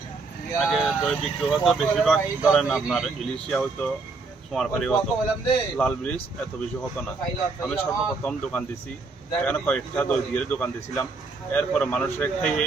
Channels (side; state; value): left; quieter; 4.0 dB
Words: আগে দই বিক্রি হতো বেশিরভাগ ধরেন আপনার ইলিশিয়া হতো, সোমারপাড়ি হতো, লাল ব্রিজ এত বেশি হতো না। আমি সর্বপ্রথম দোকান দিছি এখানে, কয়েকটা দই দিয়ে দোকান দিয়েছিলাম। এরপরে মানুষের খেয়ে